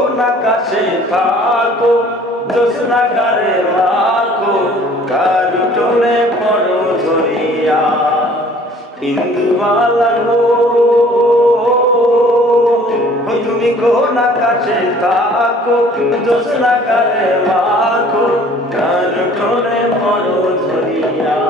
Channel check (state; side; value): normal; both; correlation 0.53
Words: আকাশে থাকো, জ্যোৎস্নাকারে রাখো কারু টোলে পড়ো ধরিয়া। ইন্দুবালা গো তুমি কোন আকাশে থাকো, জ্যোৎস্নাকারে রাখো কারু টোলে পড়ো ধরিয়া।